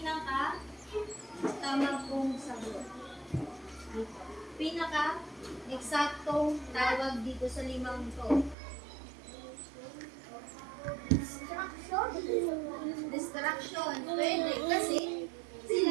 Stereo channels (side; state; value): left; drops out; at 8.6 s